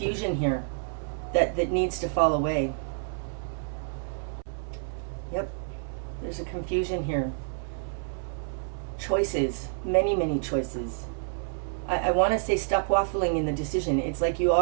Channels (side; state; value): left; silent; 59 dB below the other